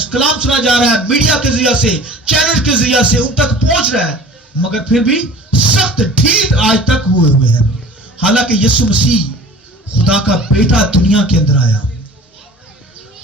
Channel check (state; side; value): normal; both; correlation 0.44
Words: کلام سنا جا رہا ہے، میڈیا کے ذریعے سے، چینل کے ذریعے سے ان تک پہنچ رہا ہے، مگر پھر بھی سخت ڈھیٹ آج تک ہوئے ہیں، حالانکہ یسوع مسیح خدا کا بیٹا دنیا کے اندر آیا۔